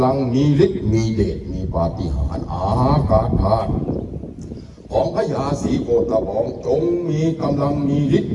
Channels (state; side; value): identical; both; correlation 1.00